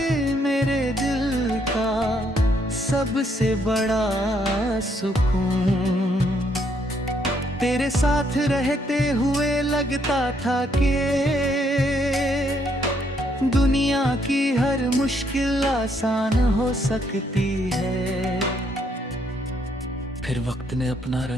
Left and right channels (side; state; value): both; normal; correlation 0.71